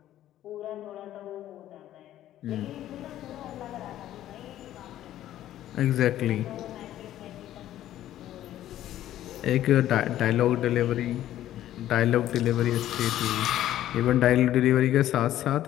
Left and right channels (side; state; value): right; quieter; 12.8 dB